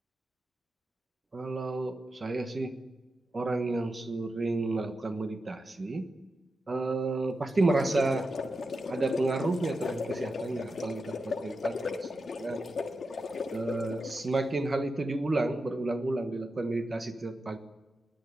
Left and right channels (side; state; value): both; normal; correlation 0.89